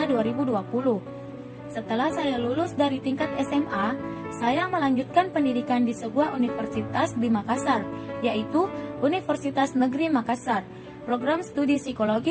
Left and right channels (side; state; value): both; identical; correlation 1.00